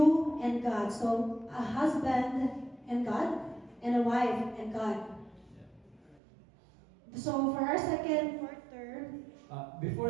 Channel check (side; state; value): left; drops out; at 6.2 s